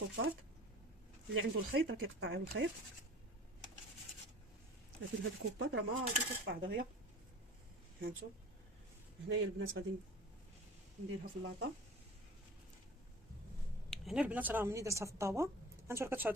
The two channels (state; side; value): normal; both; correlation 0.40